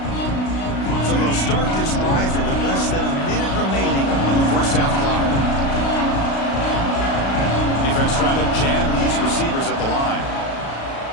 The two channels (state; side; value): late; right; 36 ms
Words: So they'll start this drive here with less than a minute remaining on the first half clock. Defense trying to jam these receivers at the line.